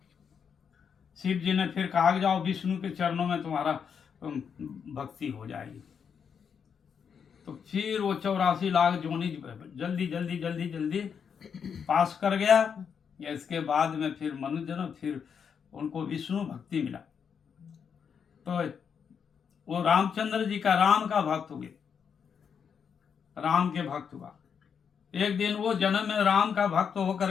शिव जी ने फिर कहा जाओ विष्णु के चरणों में तुम्हारा भक्ति हो जाएगी। तो फिर वो 84 लाख जोनी जल्दी जल्दी जल्दी जल्दी पास कर गया। इसके बाद में फिर मनुष्य जन्म, फिर उनको विष्णु भक्ति मिला। तो वो रामचंद्र जी का राम का भक्त हुए, राम के भक्त हुआ। एक दिन वो जन्म में राम का भक्त होकर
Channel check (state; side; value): quieter; right; 7.0 dB